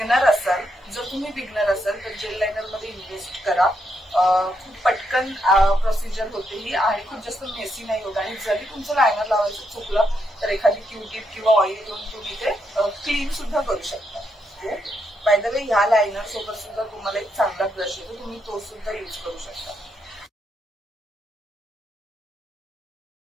असाल तर जेल लायनर मध्ये इन्व्हेस्ट करा. खूप पटकन प्रोसिजर होते ही आणि खूप जास्त मेसी नाही होत. आणि जरी तुमचं लायनर लावायचं चुकलं तर एखादी क्यूटिप किंवा ऑइल घेऊन तुम्ही ते क्लीन सुद्धा करू शकता. बाय द वे ह्या लायनर सोबत सुद्धा तुम्हाला एक चांगला ब्रश येतो, तुम्ही तो सुद्धा यूज करू शकता.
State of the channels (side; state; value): both; normal; correlation 0.80